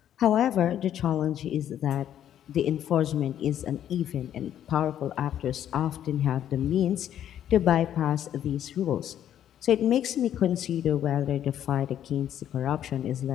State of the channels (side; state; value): right; quieter; 10.6 dB